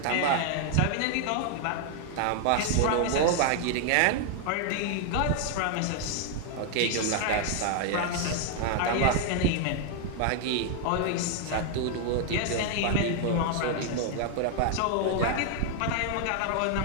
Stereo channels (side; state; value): both; different; correlation 0.00